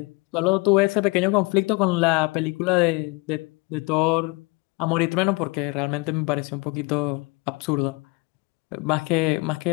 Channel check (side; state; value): right; quieter; 27.0 dB